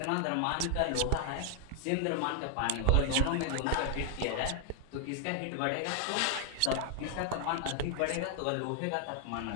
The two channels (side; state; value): both; different; correlation 0.00